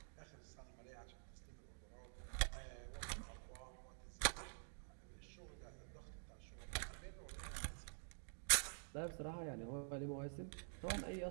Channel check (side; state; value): left; silent; digital silence